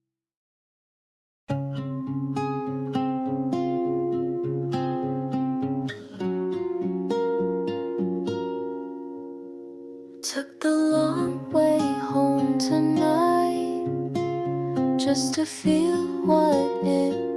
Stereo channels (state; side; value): identical; both; correlation 1.00